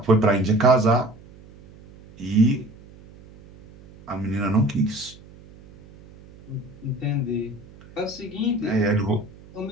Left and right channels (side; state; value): right; noise; hum, 22 dB below the sound